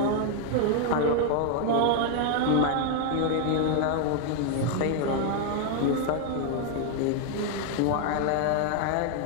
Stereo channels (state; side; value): different; both; correlation 0.00